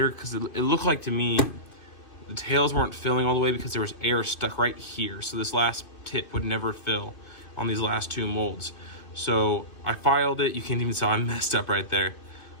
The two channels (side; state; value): right; late; 2.5 ms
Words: because it looked like to me the tails weren't filling all the way because there was air stuck right here. So this last tip would never fill on these last two molds. So I filed it. You can't even see I messed up right there.